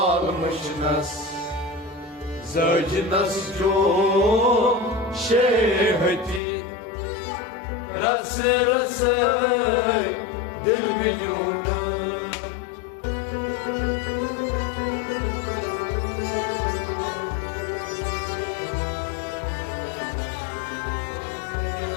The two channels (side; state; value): right; drops out; at 6.4 s